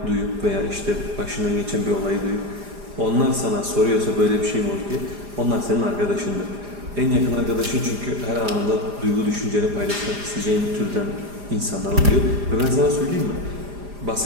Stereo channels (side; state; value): left; late; 4.9 ms